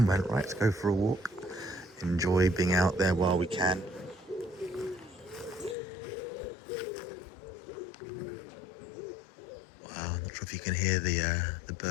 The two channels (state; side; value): drops out; right; at 5.8 s